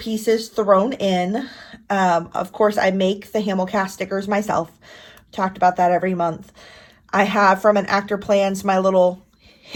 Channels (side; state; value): both; identical; correlation 1.00